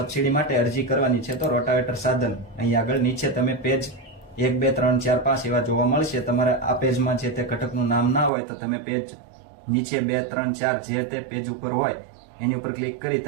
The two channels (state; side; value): drops out; left; at 8.3 s